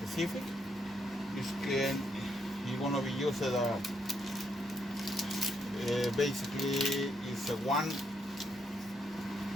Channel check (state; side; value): normal; both; correlation 0.77